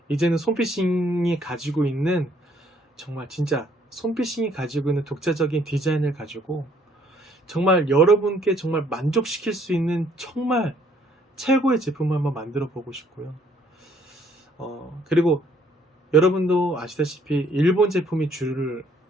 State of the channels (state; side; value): normal; both; correlation 0.64